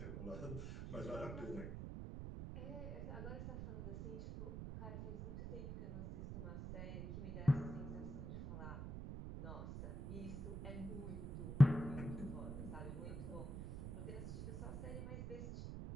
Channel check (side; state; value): right; noise; rumble, 5 dB below the sound